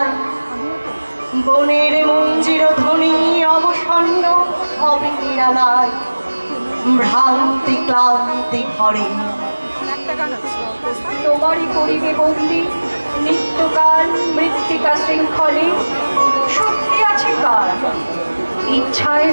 বনের মঞ্জির ধ্বনি অবসন্ন হবে নিরালায়, ভ্রান্তি ক্লান্তি ভরে। তোমারই করিবে বন্দি নিত্যকাল মৃত্তিকা শৃঙ্খলে, শক্তি আছে কার ইচ্ছায়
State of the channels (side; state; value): both; inverted; correlation -1.00